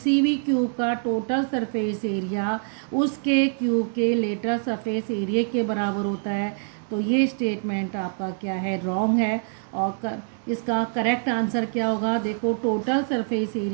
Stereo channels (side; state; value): left; silent; 62 dB below the other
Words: भी क्यूब का टोटल सरफेस एरिया उसके क्यूब के लेटरल सरफेस एरिया के बराबर होता है। तो ये स्टेटमेंट आपका क्या है, रॉन्ग है। और इसका करेक्ट आंसर क्या होगा, देखो टोटल सरफेस